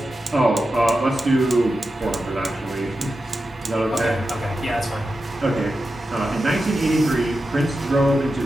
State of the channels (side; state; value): both; normal; correlation 0.90